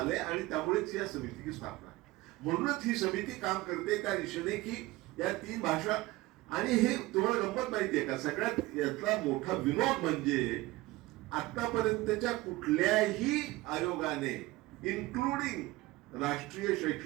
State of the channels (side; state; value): left; quieter; 19.6 dB